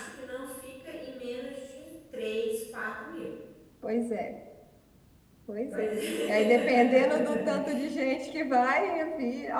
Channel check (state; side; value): identical; both; correlation 1.00